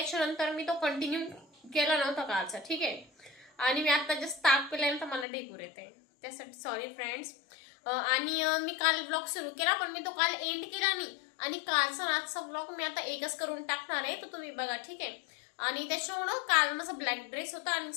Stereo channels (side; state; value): right; drops out; at 5.2 s